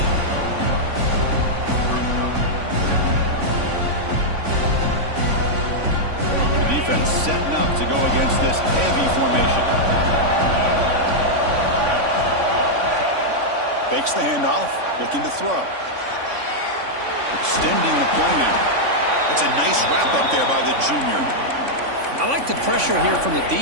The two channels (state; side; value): late; left; 3.5 ms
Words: The defense setting up to go against this heavy formation. Fakes the handoff, looking to throw. Extending the play now. That's a nice wrap up there by the junior. I like the pressure here from the